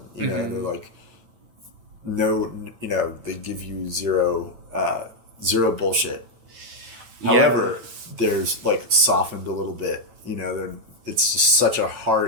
they're like, no, they give you zero bullshit. However, there's like softened a little bit, it's just such a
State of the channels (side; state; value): left; late; 9.0 ms